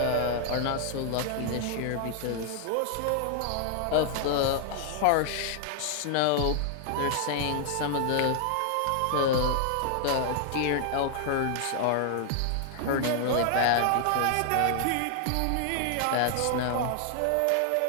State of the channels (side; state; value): both; different; correlation 0.00